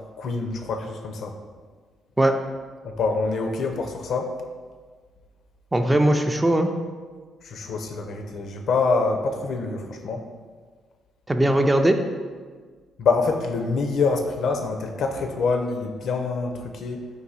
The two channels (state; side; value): normal; both; correlation 0.81